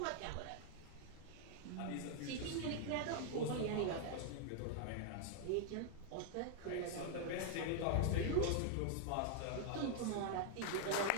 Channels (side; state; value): both; different; correlation 0.00